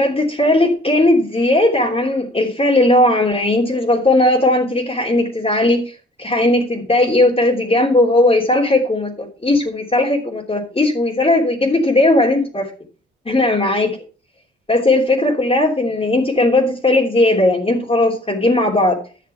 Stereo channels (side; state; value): both; normal; correlation 0.54